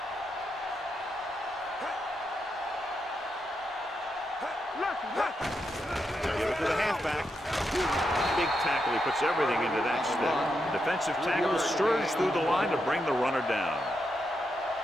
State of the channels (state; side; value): normal; both; correlation 0.84